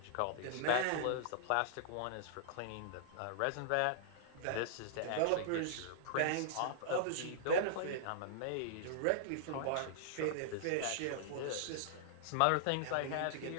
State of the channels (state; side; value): different; both; correlation -0.01